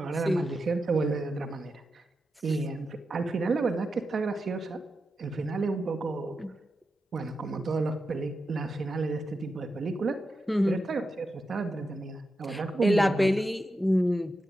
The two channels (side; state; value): both; normal; correlation 0.88